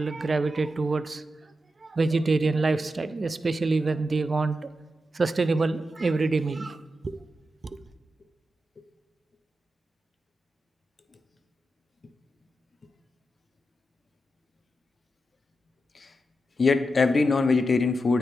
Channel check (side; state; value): both; normal; correlation 0.88